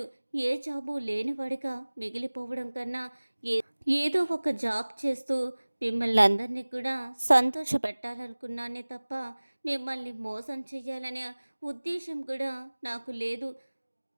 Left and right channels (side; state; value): both; inverted; correlation -1.00